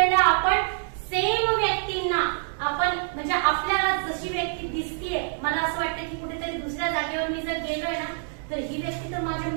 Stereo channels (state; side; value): silent; left; digital silence